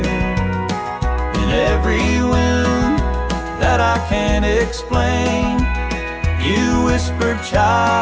In every wound that I can't explain, you whisper,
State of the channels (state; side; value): identical; both; correlation 1.00